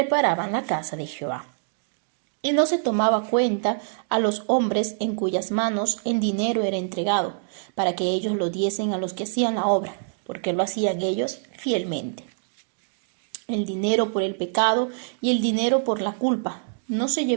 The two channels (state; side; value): silent; left; digital silence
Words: la casa de Jehová. Y no se tomaba cuenta a los hombres en cuyas manos el dinero era entregado, para que ellos lo diesen a los que hacían la obra, porque lo hacían ellos fielmente. El dinero por el pecado y el dinero por la culpa no se